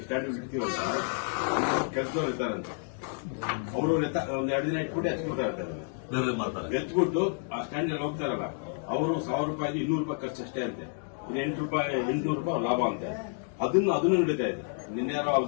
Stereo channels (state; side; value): silent; right; 58 dB below the other